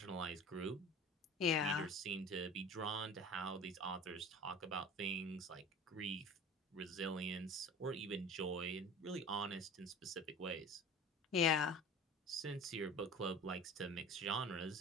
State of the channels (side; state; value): both; normal; correlation 0.39